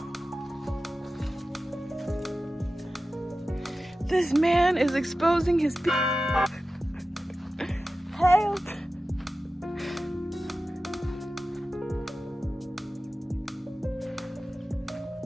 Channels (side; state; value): both; normal; correlation 0.94